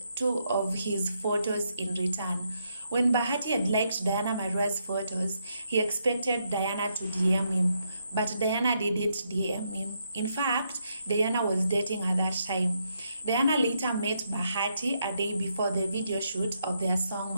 his photos in return. When Bahati had liked Diana Marua's photos, he expected Diana to DM him, but Diana didn't DM him. In fact, Diana was dating at that time. Diana later met Bahati a day before the video shoot of their song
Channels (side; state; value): both; inverted; correlation -0.78